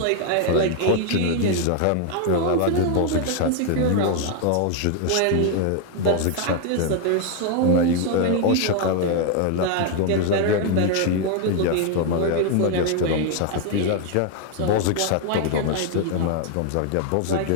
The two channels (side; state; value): both; different; correlation 0.01